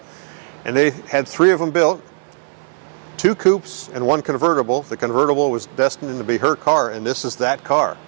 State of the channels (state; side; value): silent; left; 62 dB below the other